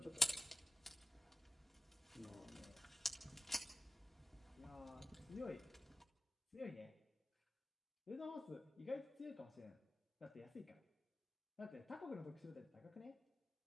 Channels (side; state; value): both; normal; correlation 0.91